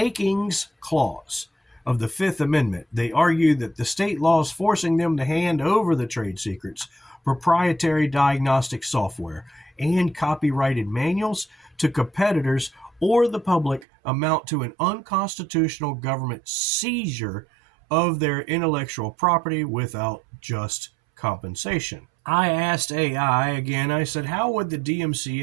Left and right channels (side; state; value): left; drops out; at 13.9 s